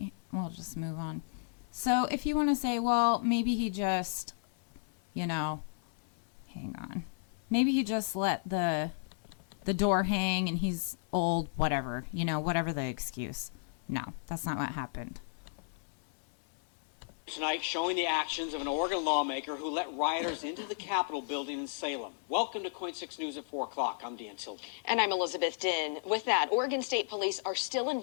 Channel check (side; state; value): right; silent; 55 dB below the other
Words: We'll just move on. So if you want to say, well, maybe he just, hang on. Maybe he just let the door hang and he's old, whatever, whatever the excuse. No, that's not what happened. Tonight, showing the actions of an Oregon lawmaker who let rioters into the Capitol building in Salem. Welcome to Coin 6 News at 4 o'clock. I'm Dan Tilden. And I'm Elizabeth Din. With that, Oregon State Police are still